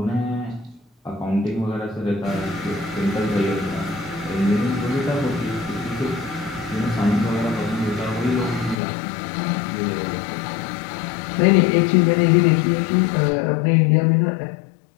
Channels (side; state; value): right; drops out; at 8.8 s